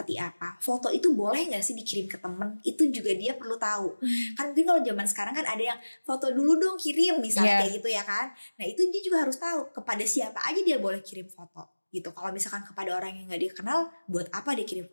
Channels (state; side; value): inverted; both; correlation -1.00